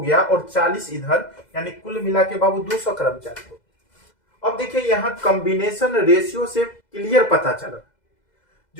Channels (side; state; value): right; late; 2.0 ms